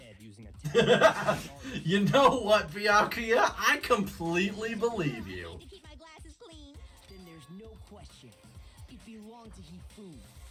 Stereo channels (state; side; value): identical; both; correlation 1.00